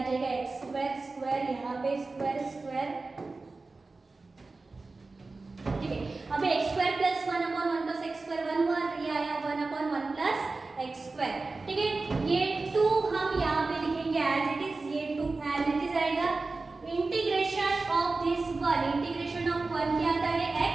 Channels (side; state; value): left; quieter; 3.7 dB